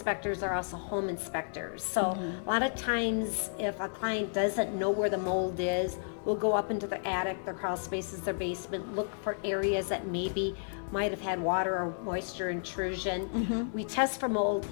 are also home inspectors. So a lot of times, if a client doesn't know where the mold is, we'll go up into the attic, their crawl spaces, their basement, look for areas that maybe might have had water or moisture intrusion. We test for mold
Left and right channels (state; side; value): silent; right; digital silence